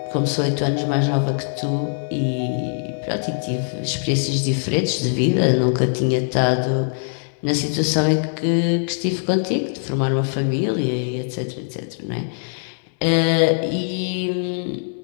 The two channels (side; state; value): right; silent; digital silence